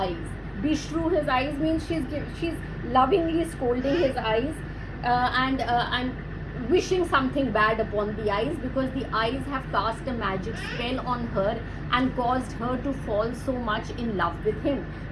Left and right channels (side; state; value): both; identical; correlation 1.00